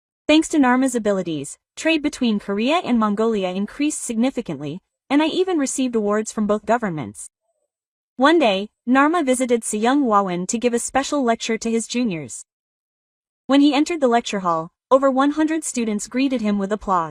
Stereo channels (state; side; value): identical; both; correlation 1.00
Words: Thanks to Narma's abilities, trade between Korea and Mongolia increased significantly, and I even received awards from both governments. One day, Narma visited Seung Hwawan to give a special lecture to his juniors. When he entered the lecture hall, over 100 students greeted him with